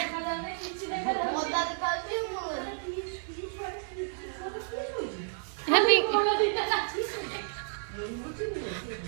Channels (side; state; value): left; silent; digital silence